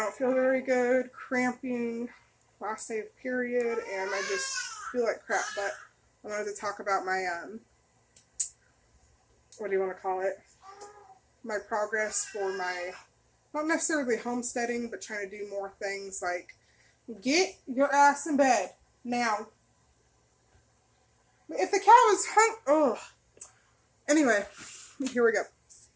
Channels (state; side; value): identical; both; correlation 1.00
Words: feel very good, cramping, last day of period, and I just feel like crap. But I wanted to talk about my, what do you want to call it? My progress for my, not necessarily homesteading, but trying to do more things like get your ass in bed now. If the cow is ugh. Anyway, here we go.